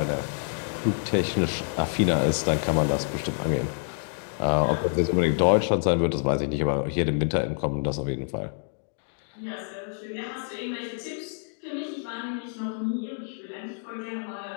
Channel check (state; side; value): silent; right; 60 dB below the other